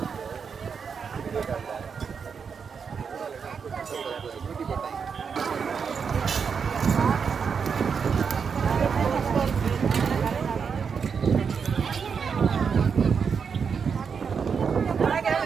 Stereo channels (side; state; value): left; quieter; 6.2 dB